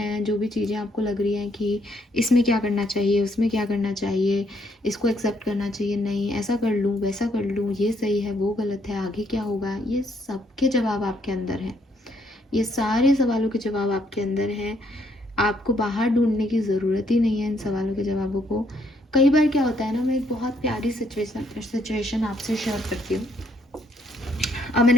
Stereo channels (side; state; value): both; normal; correlation 0.71